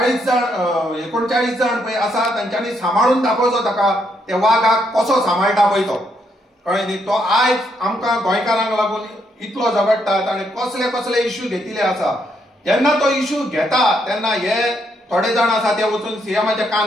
39 जण पळय आसा तांच्यांनी सांबाळून दाखोवचो ताका त्या वागाक कसो सांबाळटा पळय तो. कळ्ळें न्ही. तो आयज आमकां गोंयकारांक लागून इतलो झगडटा ताणें कसले कसले इश्यू घेतिल्ले आसा. जेन्ना तो इश्यू घेता तेन्ना हे थोडे जाण आसा ते वचून सीएमाच्या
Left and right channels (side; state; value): both; normal; correlation 0.75